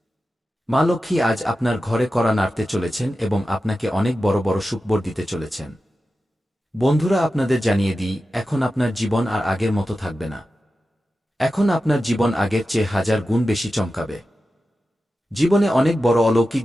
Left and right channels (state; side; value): normal; both; correlation 0.93